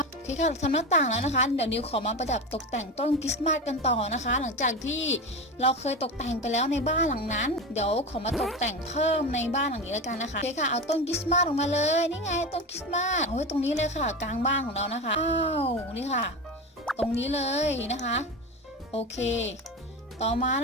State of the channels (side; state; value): both; normal; correlation 0.22